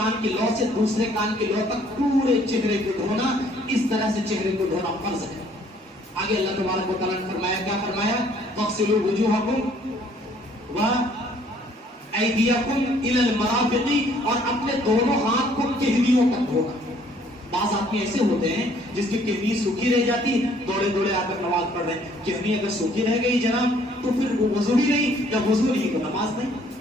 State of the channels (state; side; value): normal; both; correlation 0.61